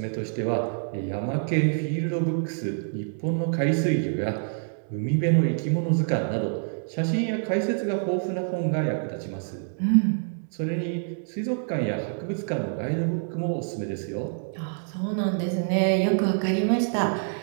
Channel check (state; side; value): silent; left; digital silence